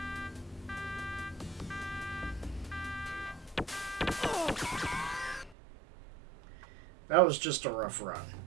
That was just a rough run.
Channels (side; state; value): left; drops out; at 5.6 s